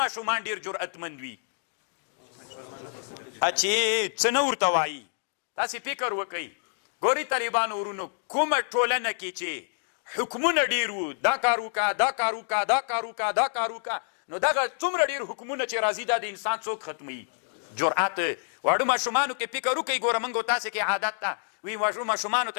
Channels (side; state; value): right; silent; digital silence